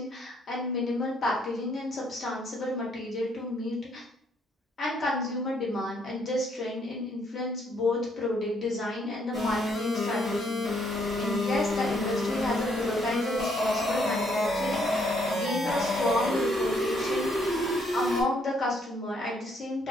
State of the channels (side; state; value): both; normal; correlation 0.69